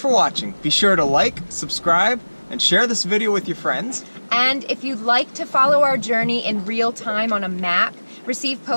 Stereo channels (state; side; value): inverted; both; correlation -1.00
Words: watching. Be sure to like, subscribe, and share this video with your friends. And if you'd like to follow our journey in real time on a map, receive